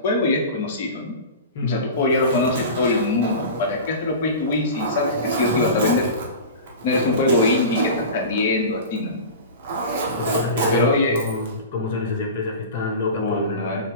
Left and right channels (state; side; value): inverted; both; correlation -0.32